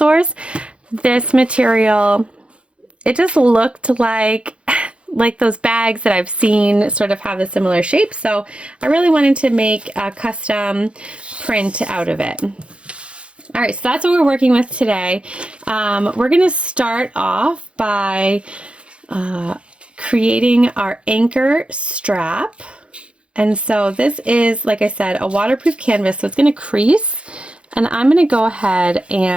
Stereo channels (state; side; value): late; left; 0.059 ms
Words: This material, it just looked like those bags that I've seen sort of have a similar shape. So I really wanted to make a custom print out of it. All right, so that's what we're working with today. We're gonna start off by creating our anchor strap. And so this is, like I said, a waterproof canvas, so it's gonna crease. And I'm gonna go ahead